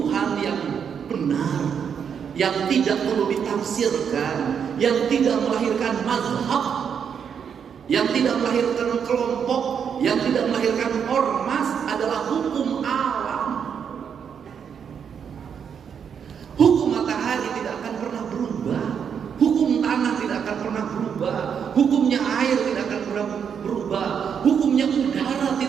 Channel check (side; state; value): left; quieter; 7.4 dB